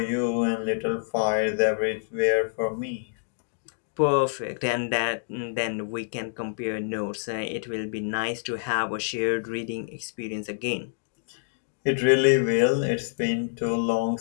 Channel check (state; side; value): silent; right; digital silence